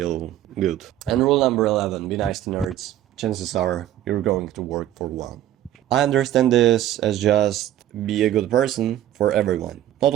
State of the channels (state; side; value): quieter; left; 12.5 dB